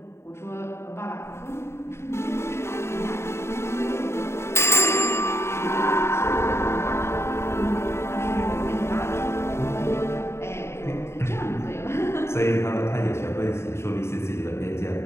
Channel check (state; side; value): late; right; 0.13 ms